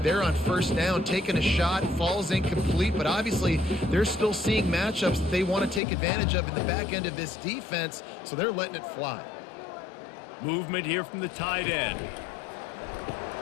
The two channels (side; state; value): right; drops out; at 5.8 s